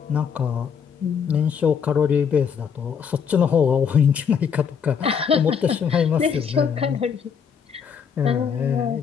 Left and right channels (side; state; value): right; quieter; 7.0 dB